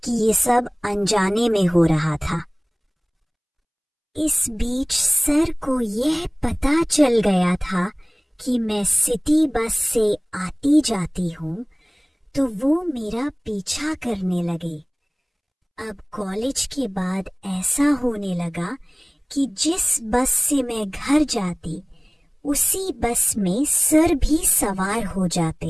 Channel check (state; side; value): identical; both; correlation 1.00